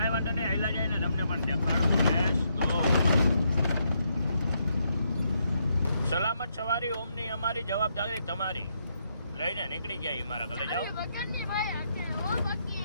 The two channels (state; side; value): inverted; both; correlation -0.78